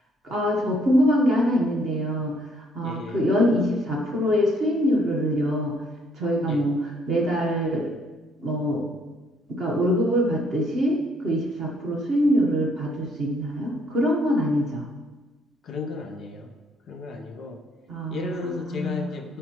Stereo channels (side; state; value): both; normal; correlation 0.67